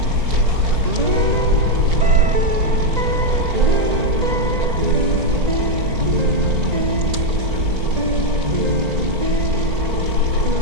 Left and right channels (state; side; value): late; left; 1.9 ms